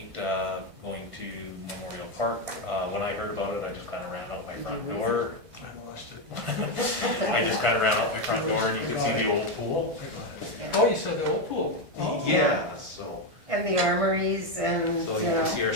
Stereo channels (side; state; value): left; late; 1.5 ms